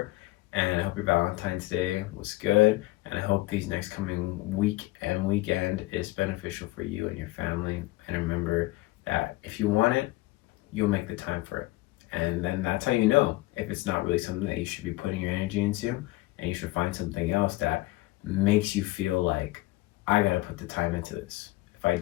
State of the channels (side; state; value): right; quieter; 19.6 dB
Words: and I hope your Valentine's Day was good, and I hope these next coming week and weekend is beneficial for you and your family. And remember that if you want it, you'll make the time for it. And then that's how you know if it's not really something that you should be putting your energy into, and you should find something else that makes you feel like, I gotta put the time into this. If I